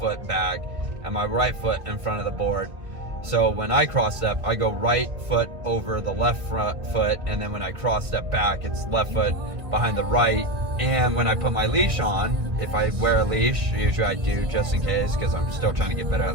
back and my right foot in front of the board. So when I cross step, I go right foot over the left front foot, and then when I cross step back, it's left foot behind the right. And when I put my leash on, if I wear a leash, usually I do just in case, because I'm still trying to get better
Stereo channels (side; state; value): left; late; 1.5 ms